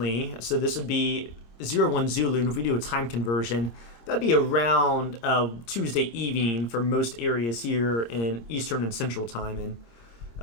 so this would be 01 Zulu, and if we do a time conversion, that'd be around Tuesday evening for most areas here in Eastern and Central time. And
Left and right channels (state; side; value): late; right; 26 ms